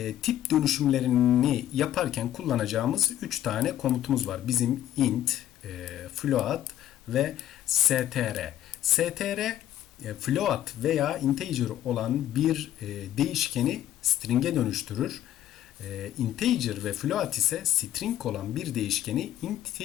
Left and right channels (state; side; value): quieter; right; 12.3 dB